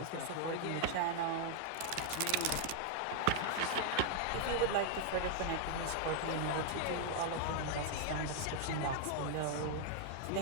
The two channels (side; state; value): both; different; correlation 0.00